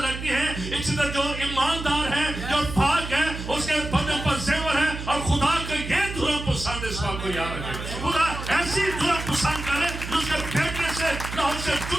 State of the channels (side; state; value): right; noise; hum, 8 dB below the sound